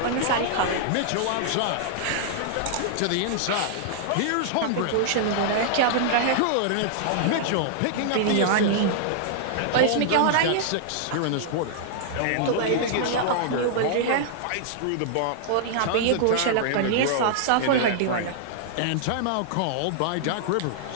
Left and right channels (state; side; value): different; both; correlation -0.01